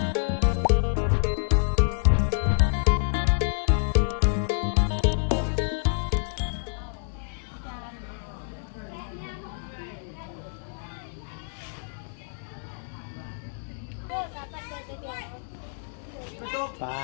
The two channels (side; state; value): right; silent; 60 dB below the other